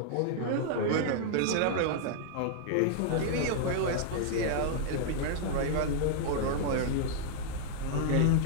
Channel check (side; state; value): both; different; correlation -0.01